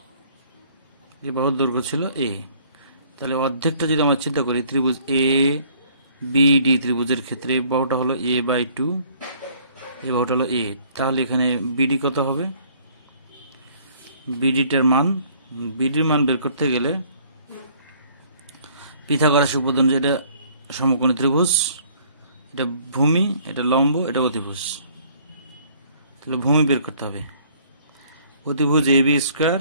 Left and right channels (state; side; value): inverted; both; correlation -0.58